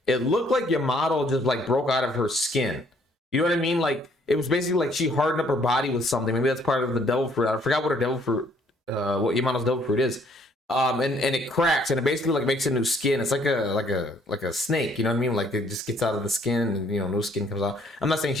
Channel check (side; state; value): both; normal; correlation 0.64